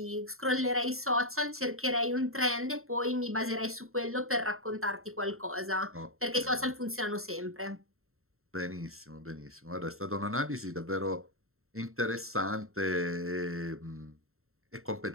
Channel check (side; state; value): left; late; 0.62 ms